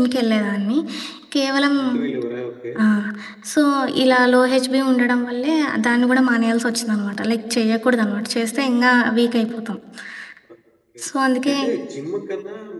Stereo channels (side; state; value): both; identical; correlation 1.00